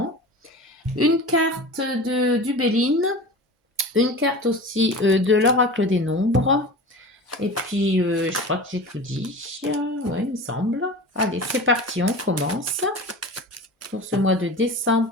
une carte du Béline, une carte aussi de l'oracle des nombres. Et puis, je crois que j'ai tout dit. Ouais, il me semble. Allez, c'est parti, on commence. Pour ce mois de décembre,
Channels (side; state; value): both; normal; correlation 0.34